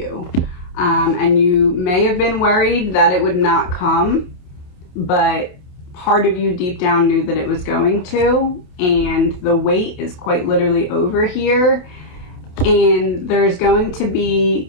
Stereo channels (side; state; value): right; late; 28 ms